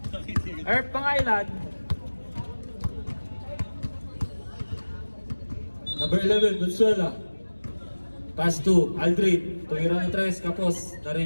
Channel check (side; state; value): both; inverted; correlation -1.00